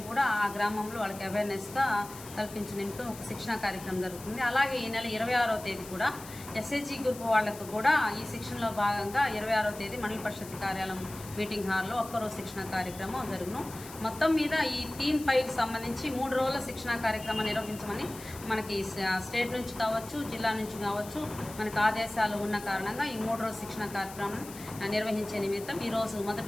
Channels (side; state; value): left; noise; hiss, 15 dB below the sound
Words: కూడా ఆ గ్రామంలో వాళ్ళకి అవేర్నెస్గా కల్పించిన నిమిత్తం ఒక శిక్షణా కార్యక్రమం జరుగుతుంది. అలాగే ఈ నెల 26వ తేదీ కూడా ఎస్హెచ్జి గ్రూప్ వాళ్లకు కూడా ఈ శిక్షణలో భాగంగా 26వ తేదీ మండల పరిషత్ కార్యాలయం మీటింగ్ హాల్లో ఒక్కరోజు శిక్షణ కార్యక్రమం జరుగును. మొత్తం మీద ఈ థీమ్ 5కి సంబంధించి 3 రోజుల శిక్షణ కార్యక్రమం నిర్వహించమని మనకి స్టేట్ నుంచి కావచ్చు, జిల్లా నుంచి కావచ్చు మనకు ఆదేశాలు ఉన్న కారణంగా ఈ 3 రోజుల శిక్షణ కార్యక్రమం నిర్వహించే నిమిత్తం ఈరోజు